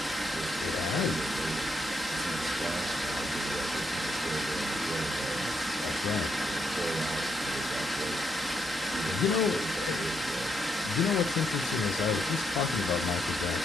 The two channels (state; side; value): normal; both; correlation 0.79